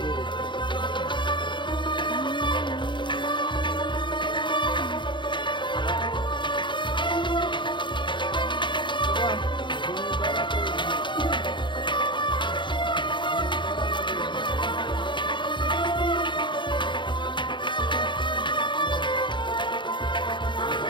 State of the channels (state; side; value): late; right; 0.23 ms